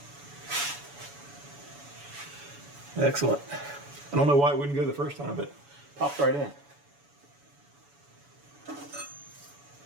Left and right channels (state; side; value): late; left; 7.0 ms